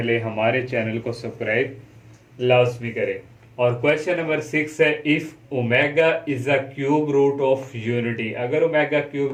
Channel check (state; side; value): identical; both; correlation 1.00